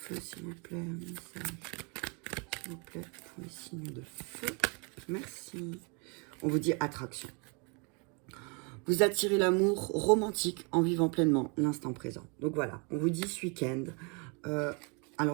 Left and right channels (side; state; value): left; quieter; 33.2 dB